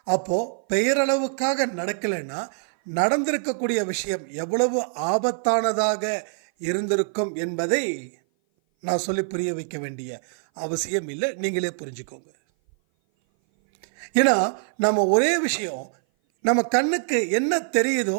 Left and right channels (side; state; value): left; silent; 57 dB below the other